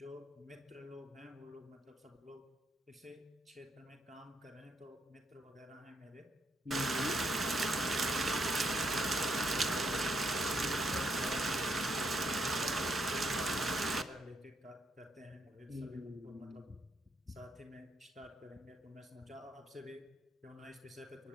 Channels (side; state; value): both; normal; correlation 0.75